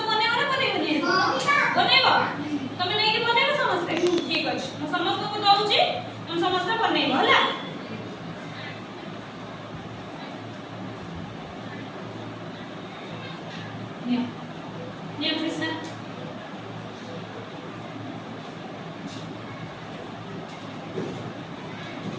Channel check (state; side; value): identical; both; correlation 1.00